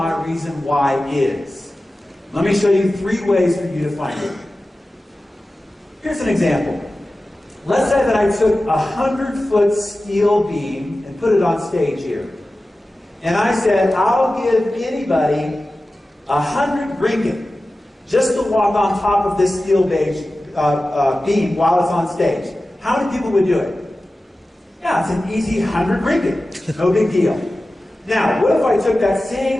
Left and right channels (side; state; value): both; normal; correlation 0.95